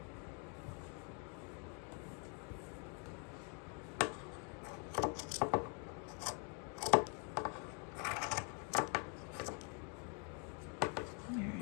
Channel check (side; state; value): right; quieter; 38.4 dB